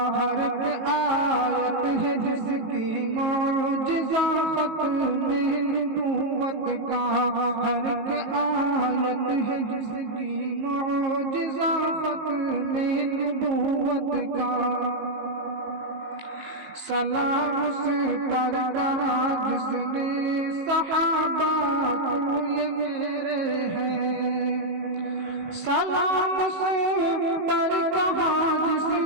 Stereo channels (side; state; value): left; late; 19 ms